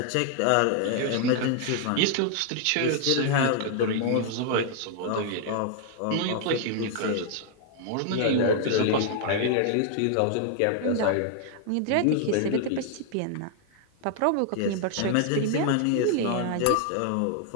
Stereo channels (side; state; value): both; different; correlation 0.00